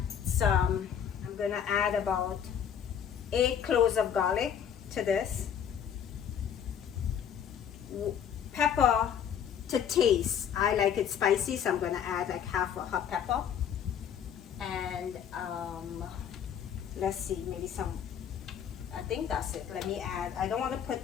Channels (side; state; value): right; quieter; 8.5 dB